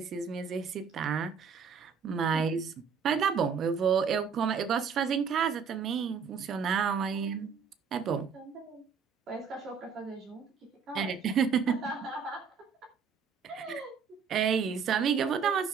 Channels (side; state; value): left; quieter; 6.3 dB